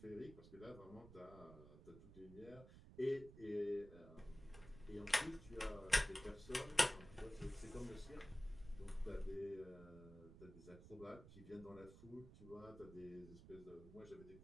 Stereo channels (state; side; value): noise; right; rumble, 16 dB below the sound